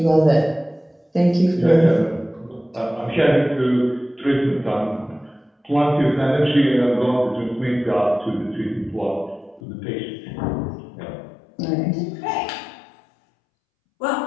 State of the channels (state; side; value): drops out; right; at 9.6 s